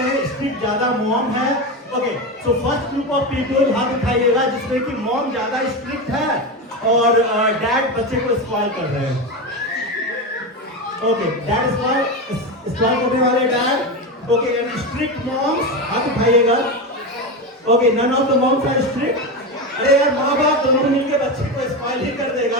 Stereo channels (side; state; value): both; normal; correlation 0.18